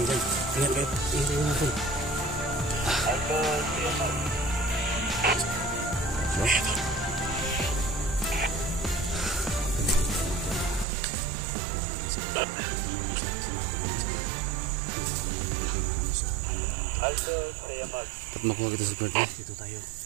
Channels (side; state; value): left; drops out; at 10.9 s